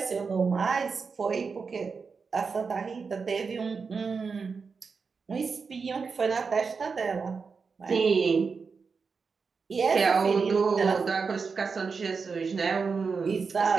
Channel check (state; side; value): quieter; left; 5.1 dB